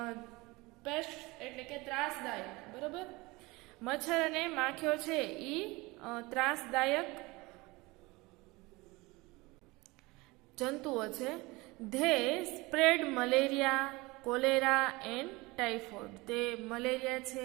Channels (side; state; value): left; quieter; 23.0 dB